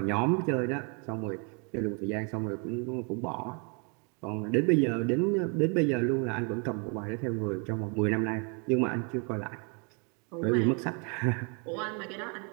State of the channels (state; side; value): quieter; left; 35.3 dB